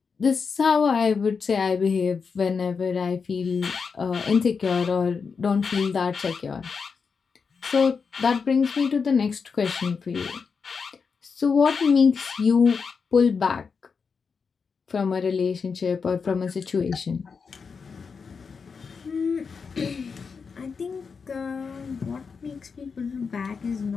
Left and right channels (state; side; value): quieter; right; 5.5 dB